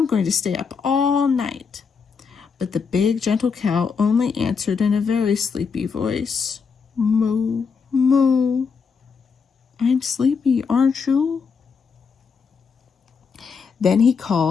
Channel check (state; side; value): quieter; right; 5.6 dB